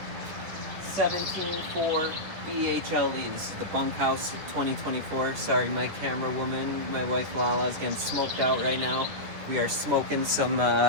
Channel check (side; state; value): left; late; 10 ms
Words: 17.4 BHLE. This is the bunkhouse 2024. Sorry, my camera woman, my wife Lala, is getting smoked out right now. We are smoking some